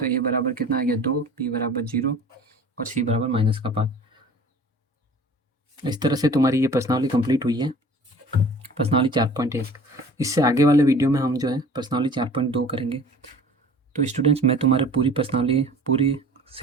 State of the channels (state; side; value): normal; both; correlation 0.45